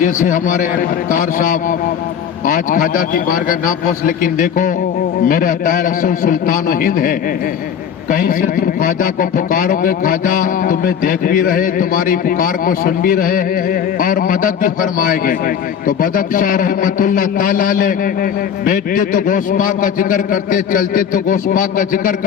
ہمارے مختار صاحب آج خواجہ کی بارگاہ نہ پہنچ لیکن دیکھو میرے عطا رسول سلطان و ہند ہے کہیں سے تم خواجہ کو پکارو گے خواجہ تمہیں دیکھ بھی رہے تمہاری پکار کو سن بھی رہے اور مدد بھی فرمائے گے تو بدخشاں رحمت اللہ تعالی علیہ بیٹھتے تو غوث پاک کا ذکر کرتے چلتے تو غوث پاک کا ذکر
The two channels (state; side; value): quieter; right; 8.2 dB